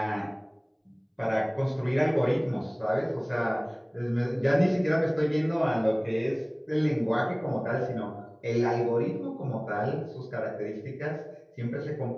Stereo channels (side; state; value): both; identical; correlation 1.00